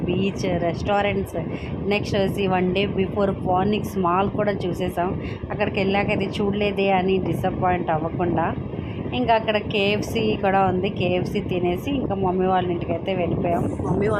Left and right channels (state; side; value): identical; both; correlation 1.00